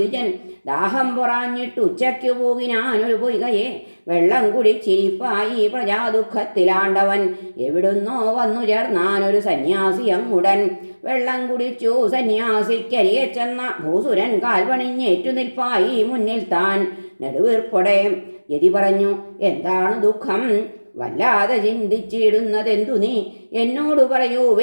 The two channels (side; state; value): both; inverted; correlation -1.00